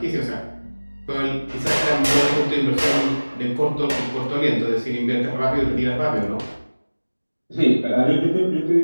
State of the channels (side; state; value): both; inverted; correlation -1.00